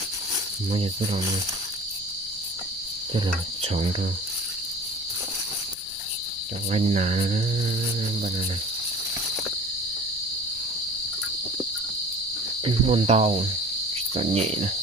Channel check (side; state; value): left; noise; rumble, 24 dB below the sound